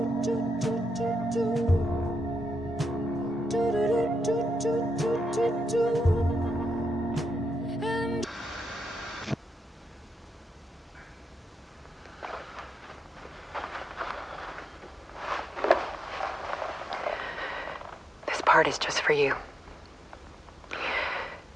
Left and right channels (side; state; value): both; normal; correlation 0.85